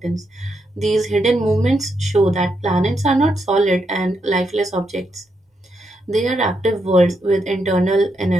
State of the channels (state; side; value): normal; both; correlation 0.81